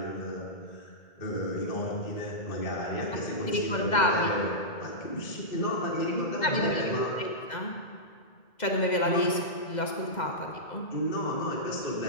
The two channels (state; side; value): late; right; 2.0 ms